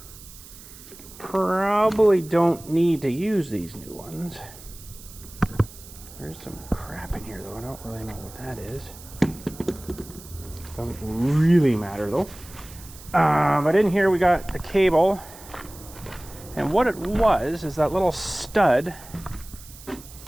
probably don't need to use these new ones. There's some crap in here though, I don't really know what that is. Doesn't really matter though. But in here we got the cable, and what it was is that little stud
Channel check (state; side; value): noise; right; hiss, 18 dB below the sound